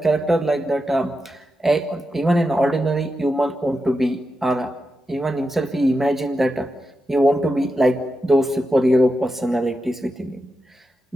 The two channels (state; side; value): normal; both; correlation 0.88